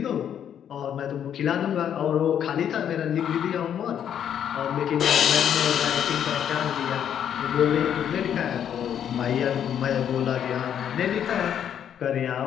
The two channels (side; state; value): right; quieter; 9.2 dB